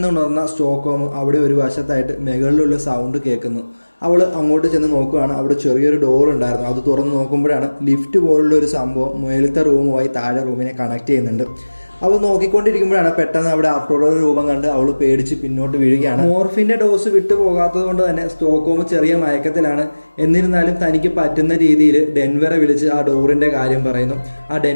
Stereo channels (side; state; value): both; inverted; correlation -1.00